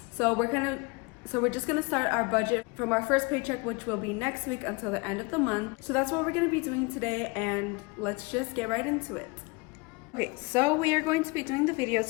So we're just gonna start our budget from our first paycheck, which will be next week until the end of the month. So that's what we're gonna be doing today, and let's just get right into it. Okay, so we are going to be doing the video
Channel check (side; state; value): right; quieter; 27.4 dB